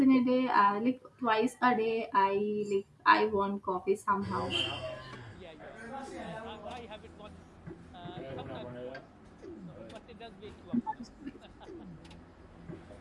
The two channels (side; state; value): both; identical; correlation 1.00